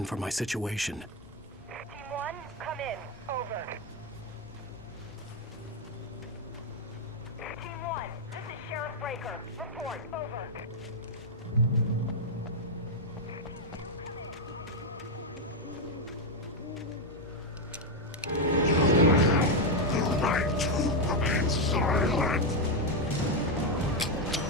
for my situation. Team 1, come in. Over. Team 1, this is Sheriff Breaker. Report. Over. You have the right to remain silent.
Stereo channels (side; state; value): both; normal; correlation 0.04